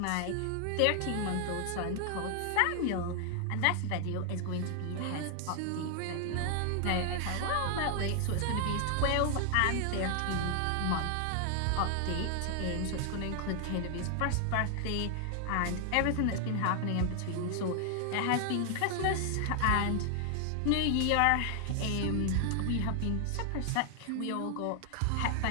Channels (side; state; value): both; different; correlation 0.00